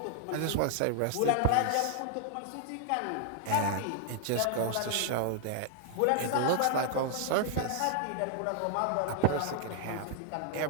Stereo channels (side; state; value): both; different; correlation -0.01